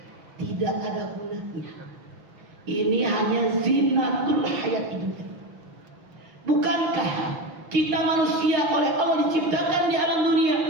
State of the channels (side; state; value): left; late; 6.0 ms